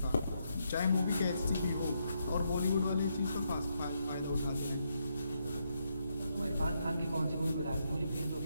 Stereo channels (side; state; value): both; inverted; correlation -0.79